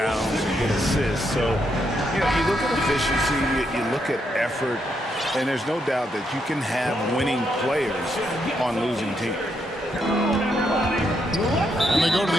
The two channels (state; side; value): normal; both; correlation 0.78